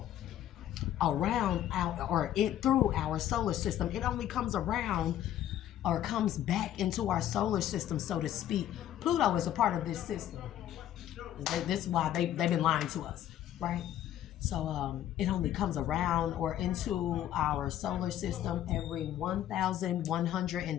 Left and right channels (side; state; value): right; quieter; 11.8 dB